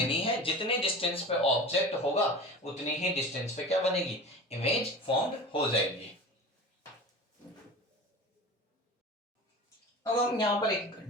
है, जितने डिस्टेंस पे ऑब्जेक्ट होगा उतनी ही डिस्टेंस पे क्या बनेगी, इमेज फॉर्म्ड हो जाएगी। अब हम यहां पर एक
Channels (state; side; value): normal; both; correlation 0.34